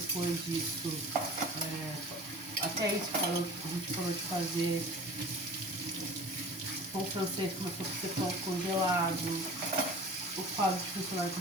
disso, até isso a gente parou de fazer. O pão francês começou a ser pão congelado. O quadro de funcionário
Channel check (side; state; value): both; normal; correlation 0.41